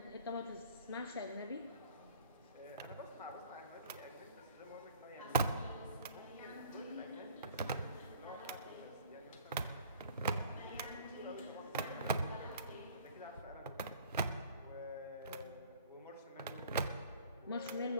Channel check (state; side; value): inverted; both; correlation -0.50